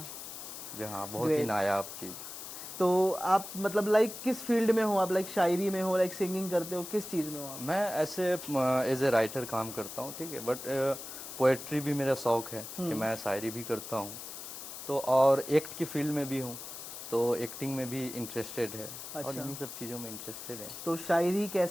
जहाँ बहुत ही नायाब चीज. तो आप मतलब लाइक किस फील्ड में हो आप? लाइक शायरी में हो, लाइक सिंगिंग करते हो, किस चीज में हो आप? मैं ऐसे एज ए राइटर काम करता हूँ, ठीक है, बट पोएट्री भी मेरा शौक है कि मैं शायरी भी करता हूँ. तो और एक्ट की फील्ड में भी हूँ, तो एक्टिंग में भी इंटरेस्टेड है. और इन्हीं सब चीज़ों में इंटरेस्टेड है. तो शायरी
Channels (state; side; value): noise; left; hiss, 10 dB below the sound